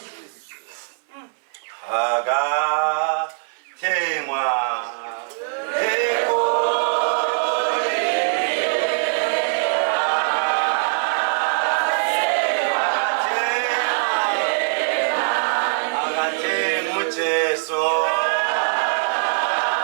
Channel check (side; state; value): left; silent; 57 dB below the other